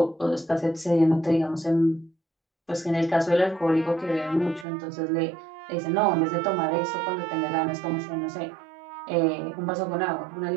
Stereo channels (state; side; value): drops out; left; at 4.7 s